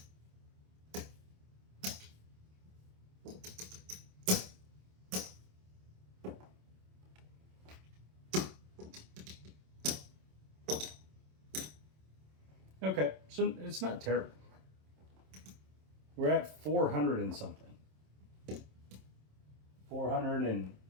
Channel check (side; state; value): left; late; 27 ms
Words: Okay, so it's not terrible. We're at 400 and something. $413.